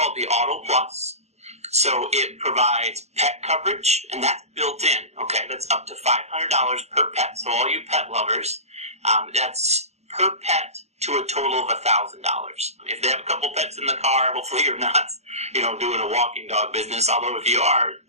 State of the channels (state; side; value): late; left; 0.31 ms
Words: the Auto Plus. So it provides pet coverage, and that's built in. Okay, that's up to $500 per pet. So all you pet lovers, that's per pet to a total of $1,000. If they have a couple pets in the car, hopefully you're not, doing a walking dog business. Although if you are,